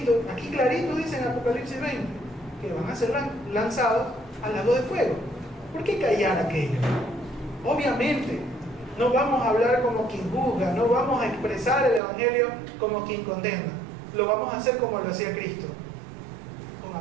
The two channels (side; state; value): left; drops out; at 12.0 s